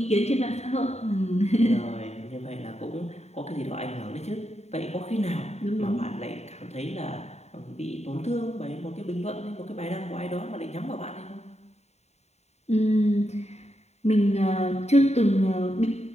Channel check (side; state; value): right; late; 0.32 ms